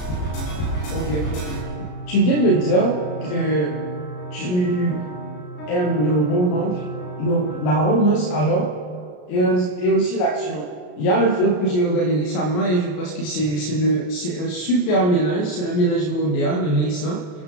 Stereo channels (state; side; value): late; right; 33 ms